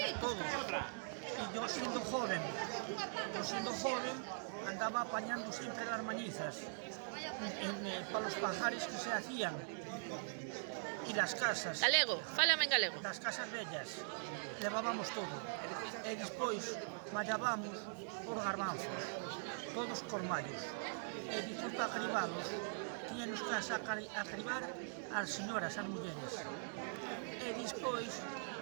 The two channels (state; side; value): silent; left; digital silence